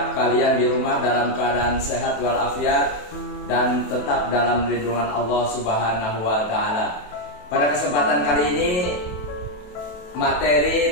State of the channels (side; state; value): right; late; 28 ms